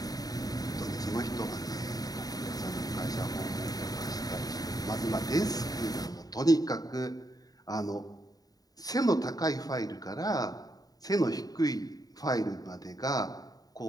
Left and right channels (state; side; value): late; right; 0.18 ms